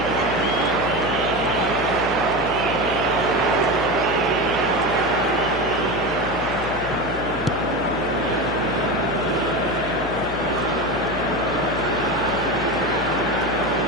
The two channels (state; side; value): noise; left; hum, 10 dB below the sound